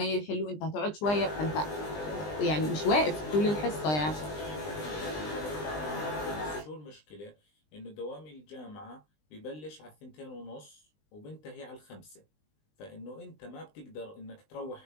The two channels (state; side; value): late; right; 20 ms